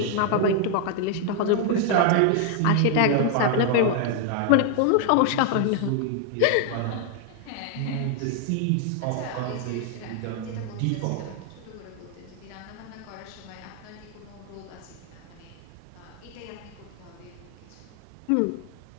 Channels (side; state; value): both; different; correlation 0.00